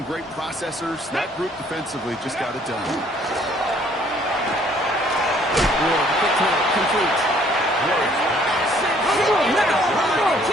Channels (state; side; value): normal; both; correlation 0.61